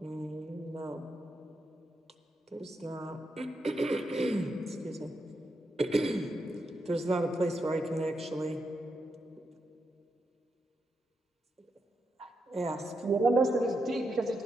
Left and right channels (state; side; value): normal; both; correlation 0.84